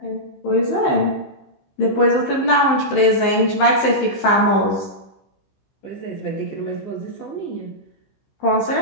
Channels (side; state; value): right; late; 15 ms